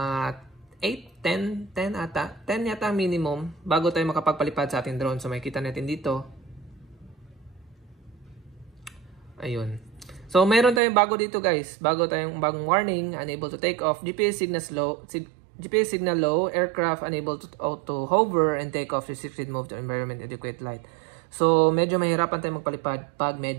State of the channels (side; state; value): left; drops out; at 10.8 s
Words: 8, 10 ata. 10 yata minimum bago tayo makapagpalipad sa ating drone. So makikita natin dito. Ayun. So, meron tayong bago dito guys. Bagong warning. Unable to take off. GPS signal low. Aircraft unable to auto hover and take off. Restricted move to environment adequate light. So, medyo mahirapan tayong magpalipad pag